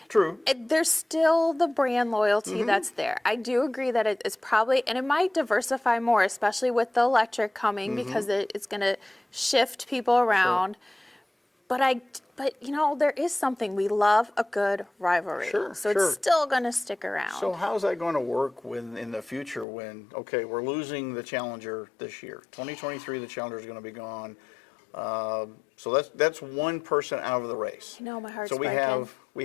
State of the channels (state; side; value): drops out; right; at 19.7 s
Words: there's still the brand loyalty that's there. I do agree that it's probably, and it might diversify more, especially with the electric coming, because it's going to shift people around. But you know, there is something, we love a good rivalry. So it's still going to stick around. So how's that going to work in the future when, okay, we're losing the Challenger this year. 2023, the Challenger is going to be gone. So that's one person out of the race. I know, my heart's so breaking.